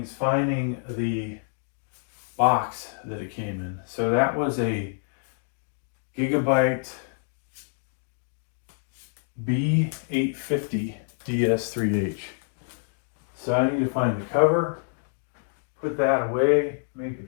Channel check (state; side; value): silent; right; digital silence